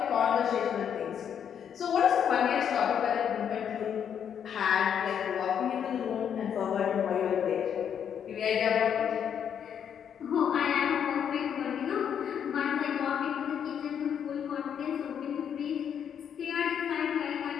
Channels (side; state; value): right; quieter; 8.4 dB